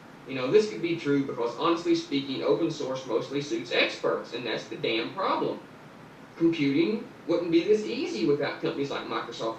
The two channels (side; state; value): both; identical; correlation 1.00